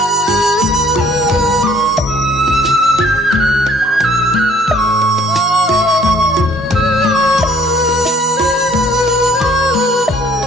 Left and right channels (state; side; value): normal; both; correlation 0.58